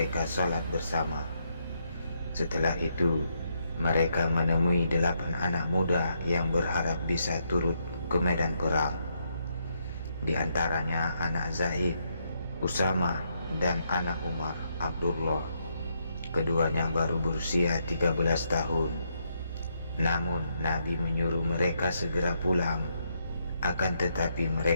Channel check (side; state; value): both; inverted; correlation -0.78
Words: salat bersama. Setelah itu, mereka menemui 8 anak muda yang berharap bisa turut ke medan perang. Di antaranya anak Zaid, Usama, dan anak Umar, Abdullah. Keduanya baru berusia 13 tahun. Namun Nabi menyuruh mereka segera pulang. Akan tetapi